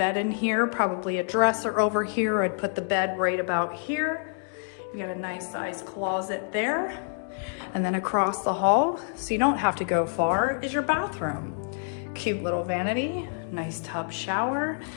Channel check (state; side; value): silent; right; digital silence